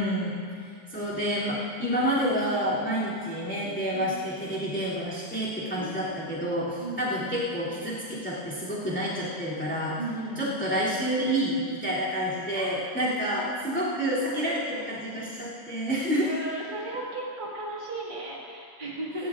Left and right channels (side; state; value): both; normal; correlation 0.06